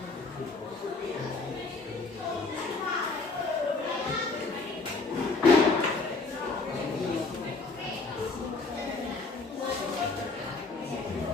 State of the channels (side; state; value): right; quieter; 3.8 dB